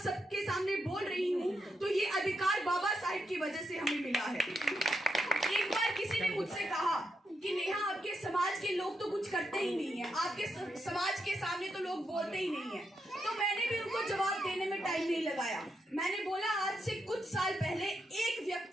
सबके सामने बोल रही हूँ तो ये अधिकार बाबा साहिब की वजह से हमें मिला है। एक बार किसी ने मुझसे कहा कि नेहा, आपके समाज के लोग तो कुछ करते ही नहीं है, आपके समाज के सामने तो लोग बोलते ही नहीं है। तो मैंने भी उनको जवाब देने में टाइम नहीं लगाया। मैंने बोला, आज से कुछ साल पहले एक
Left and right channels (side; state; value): both; normal; correlation 0.83